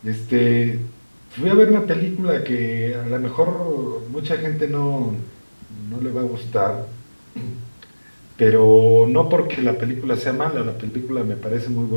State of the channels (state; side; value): inverted; both; correlation -1.00